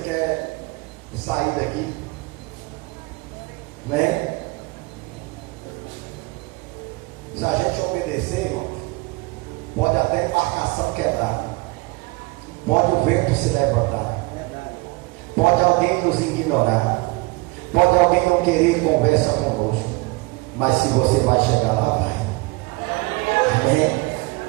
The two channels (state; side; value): quieter; left; 25.2 dB